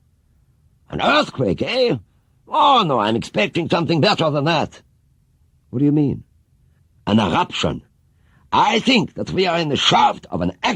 "An earthquake, eh? Oh, no, I'm expecting something better than that." "What do you mean?" "An eruption. I think that we are in the shaft of an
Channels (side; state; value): both; identical; correlation 1.00